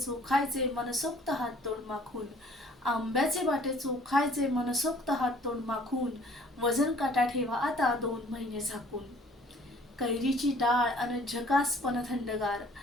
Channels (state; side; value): normal; both; correlation 0.55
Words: मनसोक्त हात तोंड माखून. आंब्याचे बाटे चोखायचे मनसोक्त हात तोंड माखून. वजन काटा ठेवा आता 2 महिने झाकून. कैरीची डाळ अन झकासपण थंडगार.